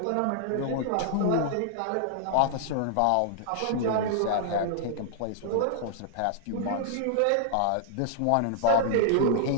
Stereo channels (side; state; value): both; different; correlation -0.01